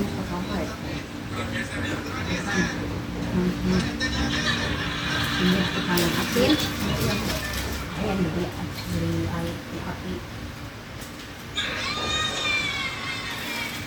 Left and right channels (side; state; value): both; identical; correlation 1.00